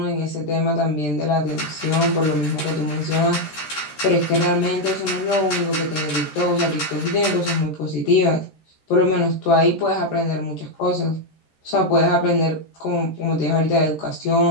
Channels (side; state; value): right; late; 13 ms